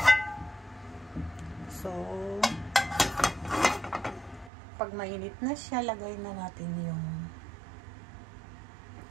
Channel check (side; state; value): left; drops out; at 4.5 s